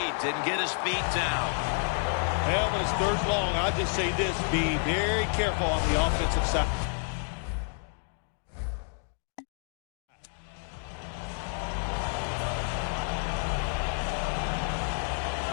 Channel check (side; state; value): right; silent; 58 dB below the other